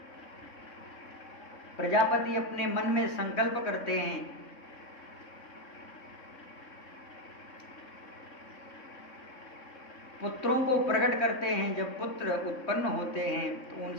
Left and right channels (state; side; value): late; right; 3.6 ms